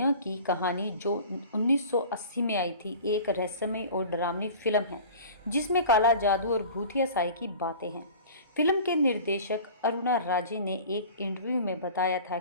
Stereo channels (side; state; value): both; inverted; correlation -0.41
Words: की कहानी जो 1980 में आई थी, एक रहस्यमय और डरावनी फिल्म है जिसमें काला जादू और भूतिया साई की बातें हैं। फिल्म के निर्देशक अरुणा राजे ने एक इंटरव्यू में बताया था